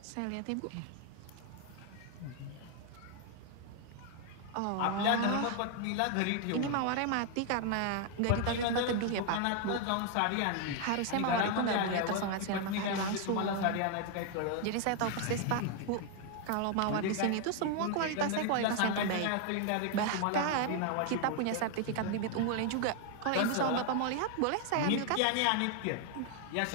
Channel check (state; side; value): different; both; correlation 0.01